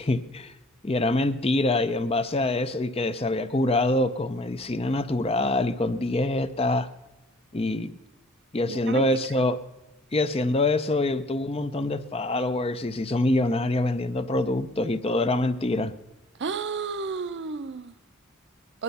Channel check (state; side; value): normal; both; correlation 0.54